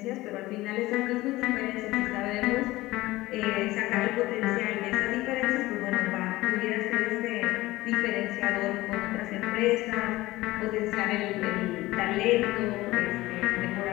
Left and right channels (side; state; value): right; quieter; 18.4 dB